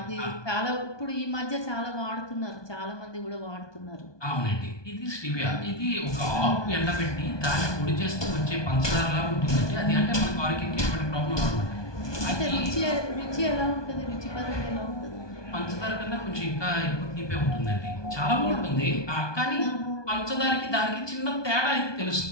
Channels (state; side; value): late; right; 1.2 ms